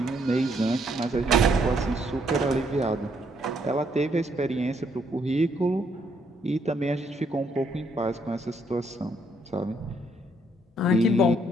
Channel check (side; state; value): both; normal; correlation 0.71